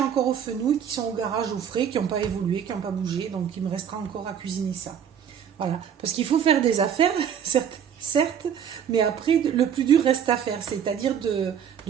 encore aux fenouils qui sont au garage au frais, qui n'ont pas évolué, qui n'ont pas bougé. Donc il me restera encore à cuisiner ça. Voilà. Parce qu'il faut faire des affaires, certes, mais après, le plus dur reste à faire. C'est-à-dire de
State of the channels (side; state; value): left; quieter; 8.3 dB